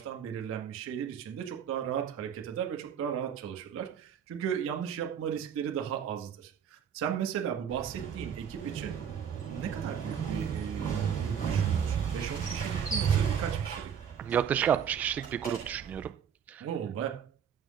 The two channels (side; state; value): left; quieter; 8.0 dB